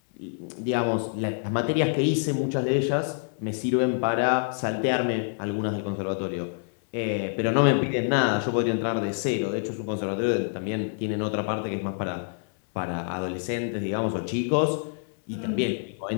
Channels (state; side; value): silent; right; 60 dB below the other